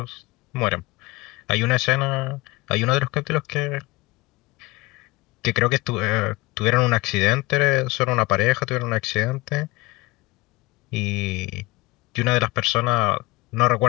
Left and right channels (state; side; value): quieter; right; 22.2 dB